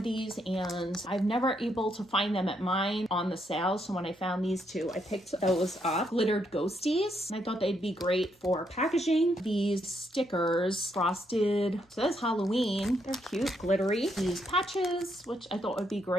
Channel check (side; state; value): both; normal; correlation 0.76